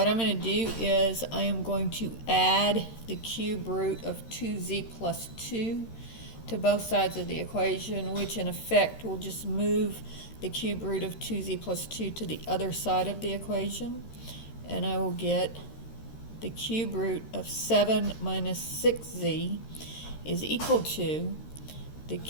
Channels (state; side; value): late; right; 13 ms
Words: I'm going to do is I am going to add the cube root of 2z plus 2 to both sides of the equation, which in effect will just move the cube root of 2z plus 2 to the other side of the equation. And I will get the cube root of 7 minus 6z is equal to the